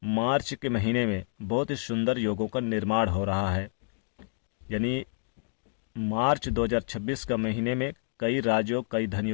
मार्च के महीने में बहुत ही सुंदर योगों का निर्माण हो रहा है। यानी मार्च 2026 का महीने में कई राजयोग, कई धन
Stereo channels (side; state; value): right; silent; digital silence